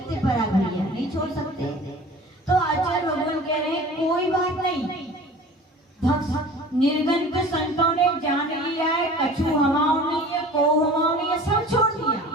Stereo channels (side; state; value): both; normal; correlation 0.42